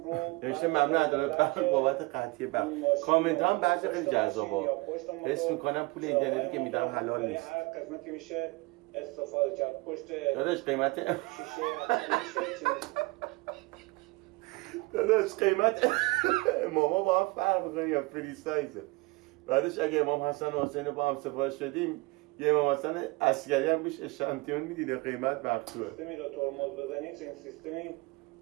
رو نوشته ممنون عدالت برق بابت قطعی برق. کامنت هم بعضی خیلی جذابه. حس میکنم پول اینترنتی که میدم حلال نیست. هر قسمتی میشه استفاده کرد. پشت داداش قیمت شیشه داداش قیمت ماما با هم فرق میکنه یا فری سایزه. بعدش اگه امام حسن و حسین با هم سفارش دادیم یه امام حسن عسکری هم روش اشانتیون میدیده قیمت مقطوعه. سیستمی رو ترمز بزنید این سیستمی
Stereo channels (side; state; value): left; quieter; 24.1 dB